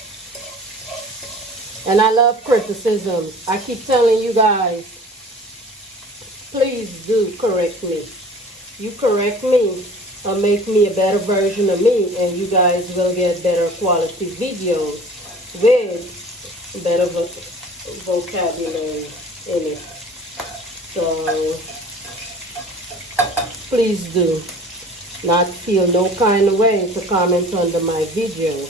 And I love criticisms. I keep telling you guys, please do correct me. You correct me or make me a better version of me, and you guys will get better quality videos with vocabulary in it. So please do not feel no kind of way to comment under my video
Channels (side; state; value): both; normal; correlation 0.44